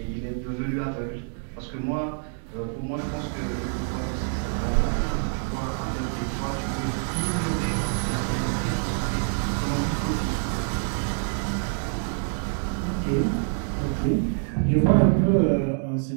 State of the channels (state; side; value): silent; left; 55 dB below the other